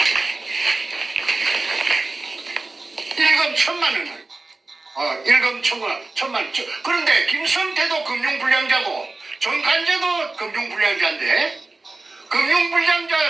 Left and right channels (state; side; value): quieter; left; 3.3 dB